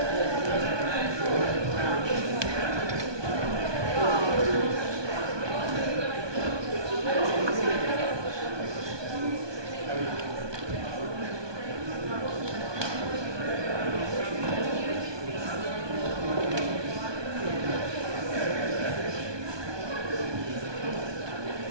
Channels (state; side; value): late; left; 1.2 ms